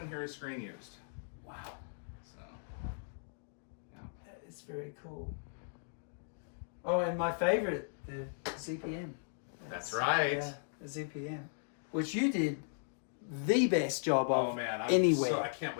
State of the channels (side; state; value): right; silent; digital silence